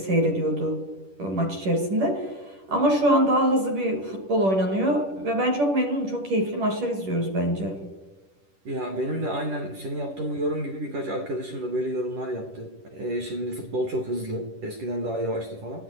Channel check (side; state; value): left; late; 10 ms